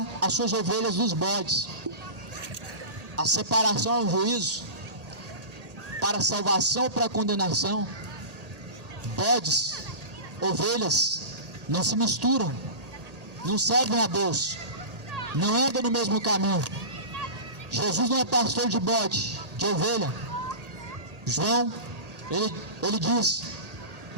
as suas ovelhas dos bodes. A separação é um juízo, para a salvação ou para a condenação. Bodes, ovelhas, não se misturam, não servem a Deus, não andam no mesmo caminho. Jesus não é pastor de bode, de ovelha. João, ele diz,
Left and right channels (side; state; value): left; late; 1.8 ms